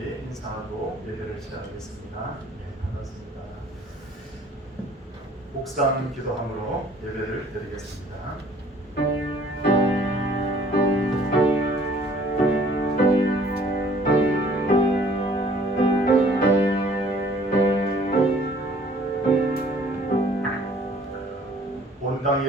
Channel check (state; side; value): normal; both; correlation 0.56